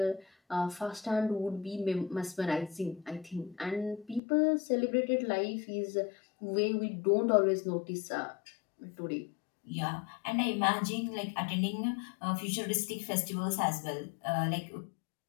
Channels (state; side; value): drops out; right; at 4.2 s